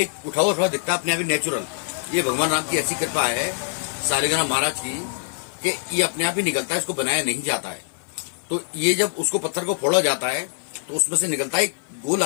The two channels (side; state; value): right; silent; 63 dB below the other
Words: उठा हुआ दिखता है अपने आप ही नेचुरल। ये भगवान राम की ऐसी कृपा है सालिग्राम महाराज की कि ये अपने आप ही निकलता है, इसको बनाया नहीं जाता है। तो ये जब उसको पत्थर को फोड़ा जाता है तो उसमें से निकलता है एक गोल